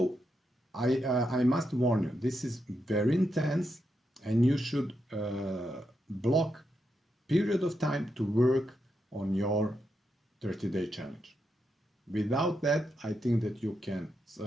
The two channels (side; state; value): both; normal; correlation 0.84